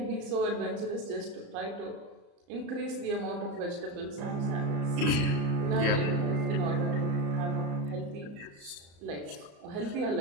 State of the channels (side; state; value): left; late; 34 ms